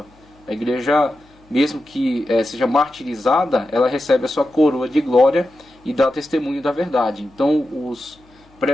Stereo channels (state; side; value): noise; left; hum, 30 dB below the sound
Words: A igreja, mesmo que seja martirizada, ela recebe a sua coroa de glória e dá testemunho da verdade. Então, os